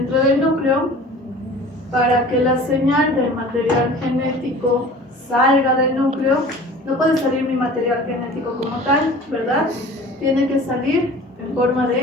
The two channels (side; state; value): both; normal; correlation 0.43